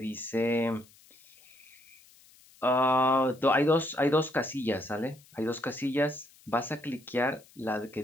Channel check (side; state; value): left; noise; hiss, 27 dB below the sound